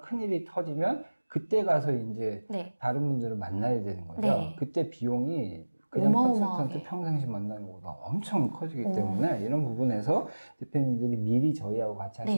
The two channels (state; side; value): inverted; both; correlation -1.00